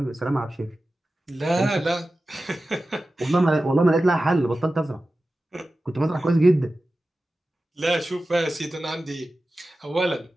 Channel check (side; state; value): both; normal; correlation 0.95